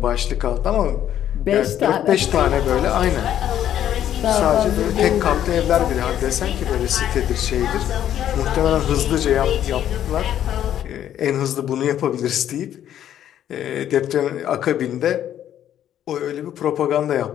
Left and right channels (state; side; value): quieter; right; 10.8 dB